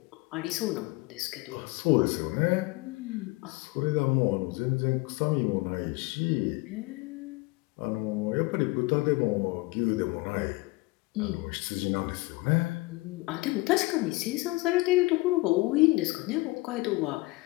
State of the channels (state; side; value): quieter; right; 23.2 dB